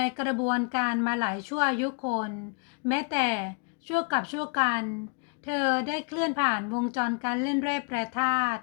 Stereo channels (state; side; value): quieter; right; 36.2 dB